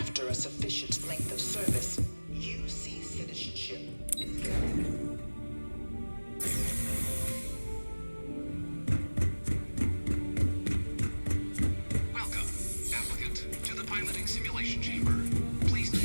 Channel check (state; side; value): inverted; both; correlation -1.00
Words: a sufficient length of service, UC citizenship is granted. Welcome, applicant, to the piloting simulation chamber. Please